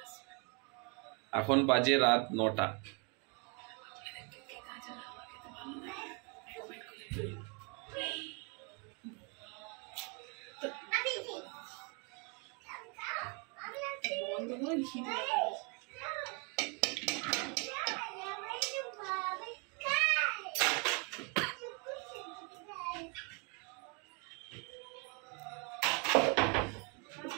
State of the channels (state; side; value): quieter; left; 34.4 dB